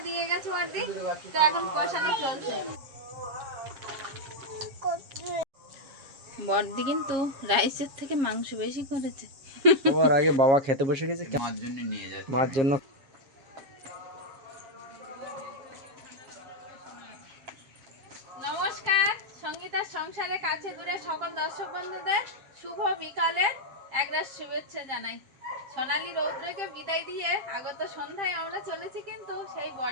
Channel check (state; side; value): late; left; 7.4 ms